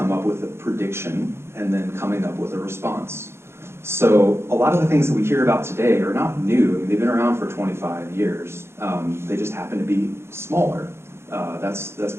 up with a prediction and then coming up with a response. So a lot of the things that we hear about today are not new. I mean, they've been around for 25 years. They just happen to be smaller. That's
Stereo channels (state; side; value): late; left; 0.12 ms